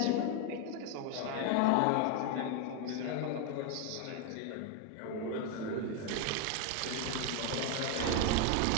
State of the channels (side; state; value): both; different; correlation 0.01